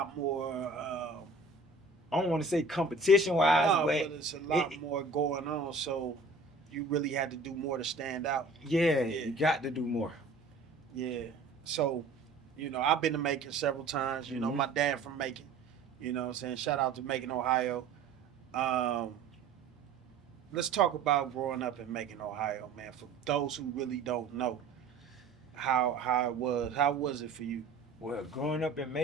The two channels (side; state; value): left; quieter; 3.9 dB